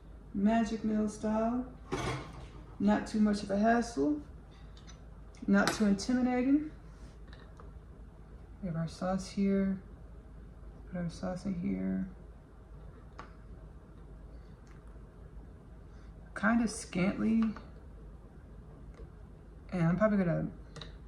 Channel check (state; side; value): identical; both; correlation 1.00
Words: magic meal style. Not too much of a hassle. Not too intimidating. We have our sauce here. Put our sauce in here. Kind of scantly. And I'm probably